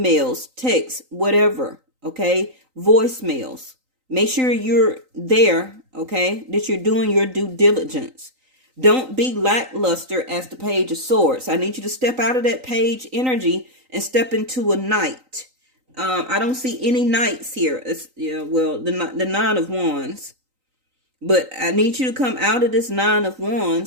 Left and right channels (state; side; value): late; left; 3.9 ms